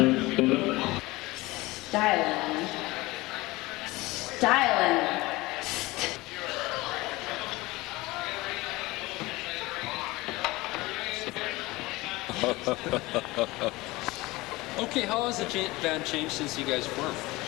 Styling. Styling. Okay, how has the band changed since you guys formed?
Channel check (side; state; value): right; quieter; 20.8 dB